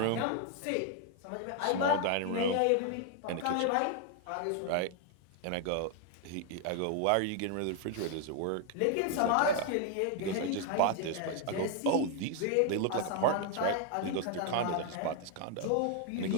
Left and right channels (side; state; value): both; different; correlation 0.01